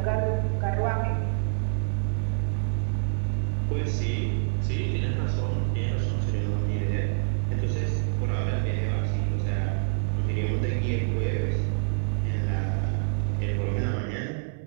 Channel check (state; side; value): silent; left; 60 dB below the other